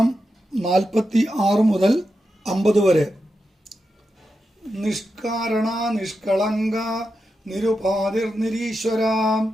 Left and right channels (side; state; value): both; normal; correlation 0.88